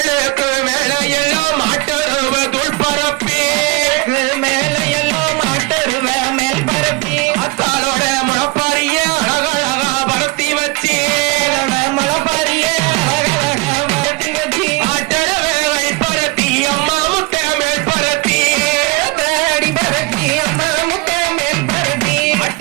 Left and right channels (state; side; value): quieter; left; 24.5 dB